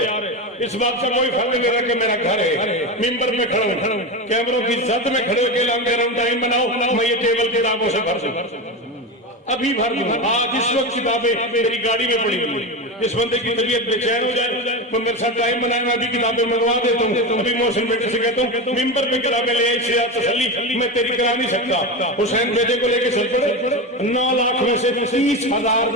इस बात का कोई फर्क नहीं ले रहा कि मेरा घर है। मिंबर में खड़ा हूँ कैमरों की जद में खड़े होकर कह रहा हूँ टाइम बनाओ। मैं ये टेबल किताबों से भर दूं अभी भर दूं। आज इस वक्त किताबें मेरी गाड़ी में पड़ी हुई। जिस बंदे की तबीयत बेचैन हो जाए तो मेरे साथ टाइम बनाए मैं भी किताबें मंगवा देता हूँ। अभी मोहसिन बेटे से कहता हूँ मिंबर पे किताबें ले आई से तसल्ली मैं तेरी करा नहीं सकता। हुसैन बेटे को लेके चल पड़े 9 लाख में से 30,000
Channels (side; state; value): both; normal; correlation 0.19